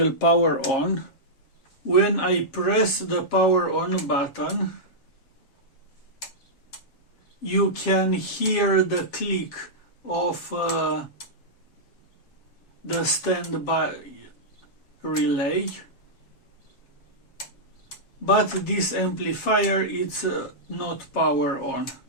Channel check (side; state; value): right; late; 7.3 ms